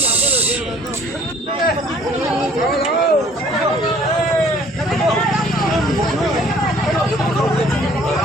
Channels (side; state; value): both; normal; correlation 0.56